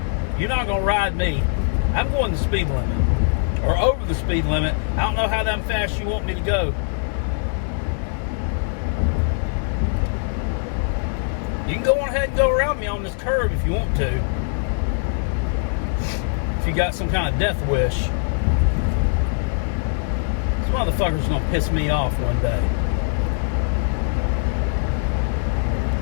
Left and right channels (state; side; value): silent; right; 64 dB below the other